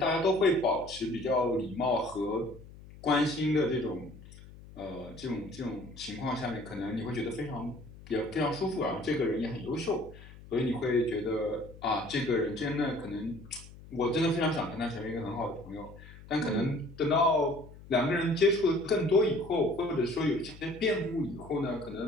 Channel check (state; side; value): noise; left; hum, 18 dB below the sound